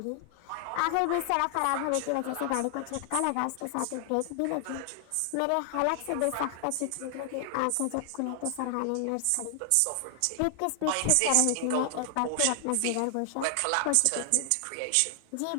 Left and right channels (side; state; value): both; different; correlation 0.00